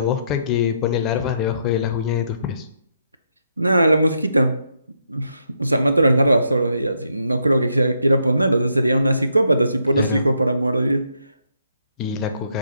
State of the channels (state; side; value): inverted; both; correlation -0.75